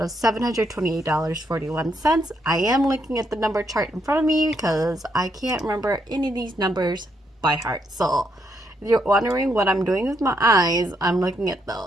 of $728.41. I am looking at the number chart in front of me because I can't remember any of these numbers by heart. So if you're wondering what I'm doing with my eyes, I'm looking at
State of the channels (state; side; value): normal; both; correlation 0.76